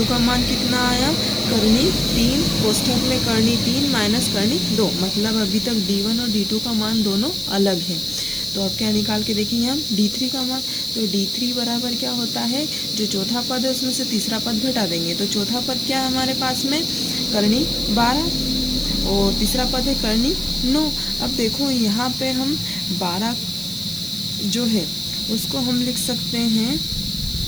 का मान कितना आया? करनी 3 कोष्ठक में करनी 3 माइनस करनी 2, मतलब अभी तक D1 और D2 का मान दोनों अलग है। तो अब क्या निकाल के देखेंगे हम? D3 का मान। तो D3 बराबर क्या होता है? जो चौथा पद है उसमें से तीसरा पद घटा देंगे। तो चौथा पद क्या है हमारे पास में? करनी 12, और तीसरा पद है करनी 9। अब देखो यहाँ पे हम 12 जो है उसको हम लिख सकते हैं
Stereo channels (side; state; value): right; noise; hiss, 11 dB below the sound